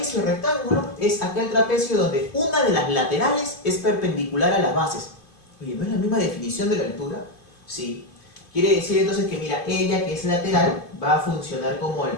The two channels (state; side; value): late; right; 2.5 ms